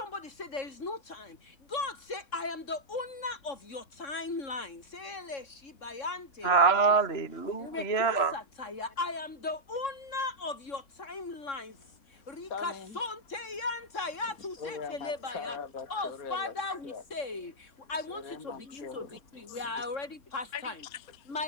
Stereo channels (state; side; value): late; right; 3.6 ms